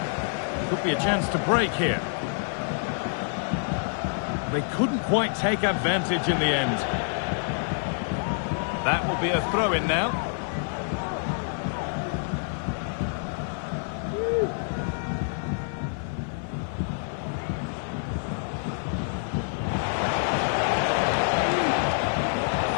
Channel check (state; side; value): silent; right; 60 dB below the other